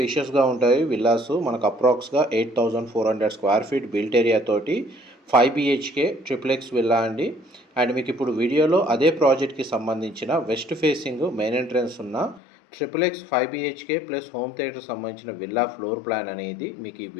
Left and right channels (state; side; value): drops out; right; at 12.4 s